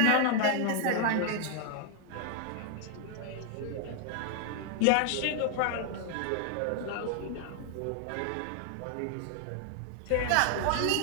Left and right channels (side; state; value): both; different; correlation 0.00